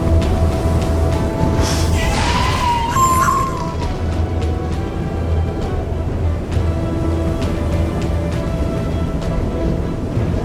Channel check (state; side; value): identical; both; correlation 1.00